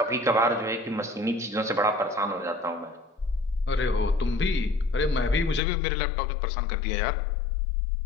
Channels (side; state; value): right; drops out; at 5.6 s